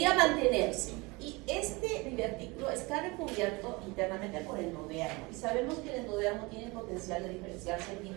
mantenerse. Y este divertículo está recubierto internamente por el endodermo. Y sabemos que el endodermo tiene el potencial de diferenciarse en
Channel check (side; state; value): left; quieter; 25.2 dB